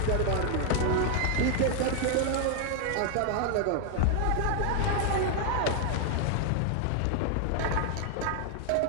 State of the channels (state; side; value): different; both; correlation 0.00